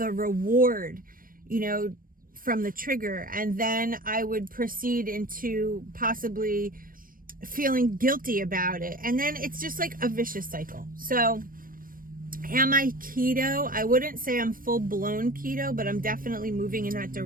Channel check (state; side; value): late; left; 0.41 ms